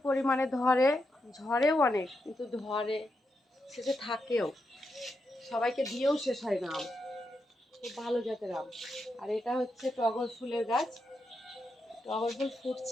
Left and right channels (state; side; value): normal; both; correlation 0.85